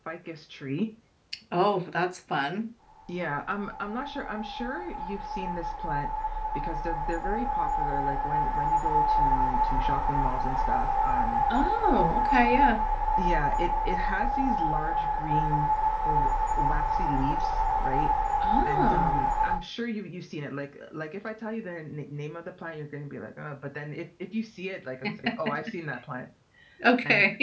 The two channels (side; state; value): both; identical; correlation 1.00